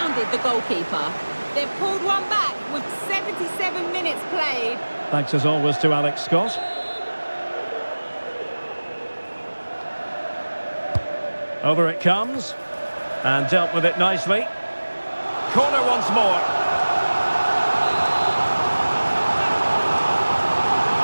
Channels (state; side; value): inverted; both; correlation -1.00